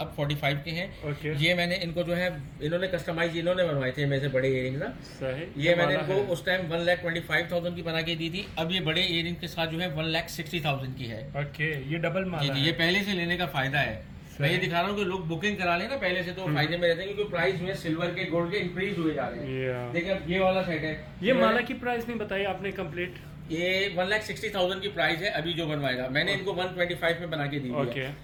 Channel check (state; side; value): identical; both; correlation 1.00